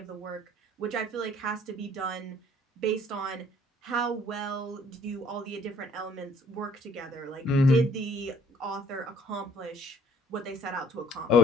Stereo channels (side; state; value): both; normal; correlation 0.58